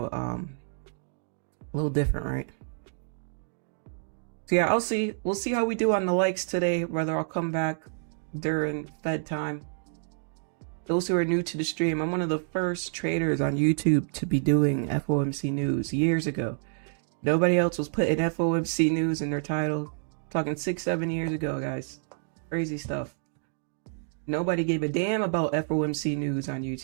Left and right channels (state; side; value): silent; left; digital silence